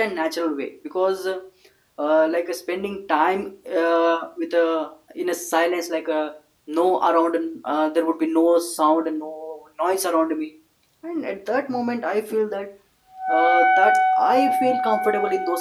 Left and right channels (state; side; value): identical; both; correlation 1.00